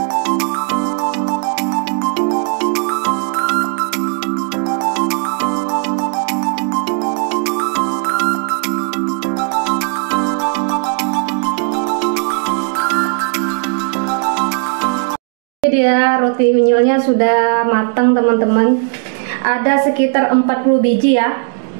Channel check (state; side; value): quieter; left; 40.0 dB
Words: Dia roti unyilnya sudah matang teman-teman. Ada sekitar 40 biji ya.